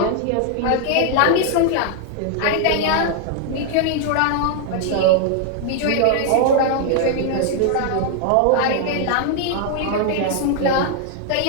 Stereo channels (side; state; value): both; different; correlation 0.00